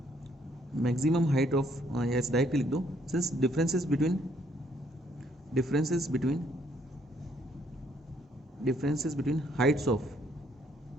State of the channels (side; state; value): both; normal; correlation 0.68